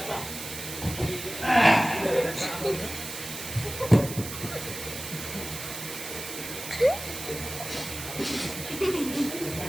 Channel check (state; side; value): noise; right; hiss, 8 dB below the sound